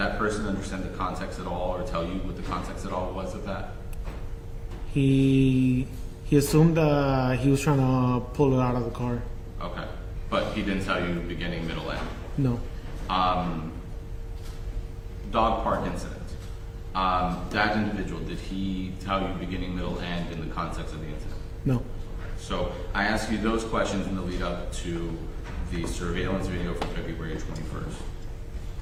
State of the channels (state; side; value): identical; both; correlation 1.00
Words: person understand the context at all, or tell you what the context at all was of that? He assumed that he was trying to pull it out of the car. Okay. But he didn't tell you beginning, middle, end? No. Dog park incident. That individual, did he tell you beginning, middle, end in the context of the incident? No. So I asked you those questions in the lead up to the surveillance video from February 21st.